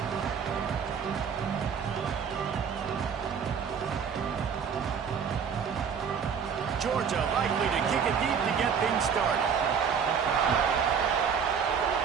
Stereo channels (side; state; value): left; quieter; 6.9 dB